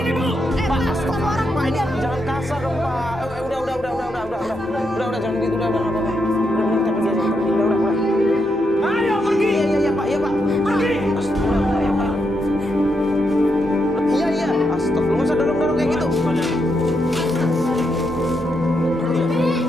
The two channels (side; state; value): both; normal; correlation 0.81